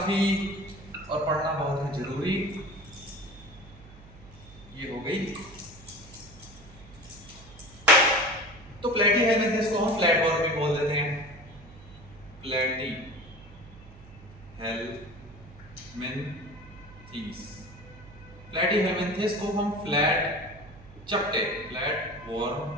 और पढ़ना बहुत है जरूरी। ये हो गई। तो प्लैटीहेल्मिन्थेस को हम फ्लैट वर्म भी बोल देते हैं। प्लैटीहेल्मिन्थेस को हम फ्लैट चपटे, फ्लैट वर्म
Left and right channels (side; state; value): right; noise; hum, 20 dB below the sound